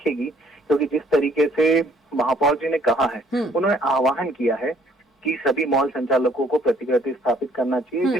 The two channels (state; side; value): normal; both; correlation 0.62